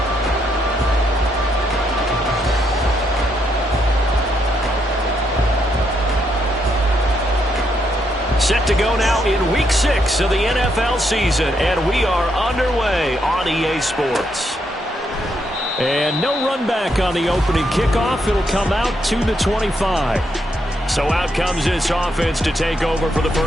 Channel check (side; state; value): both; normal; correlation 0.77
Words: Set to go now in Week 6 of the NFL season, and we are underway on EA Sports. And no run back on the opening kickoff. It'll come out to the 25. So out comes this offense to take over for the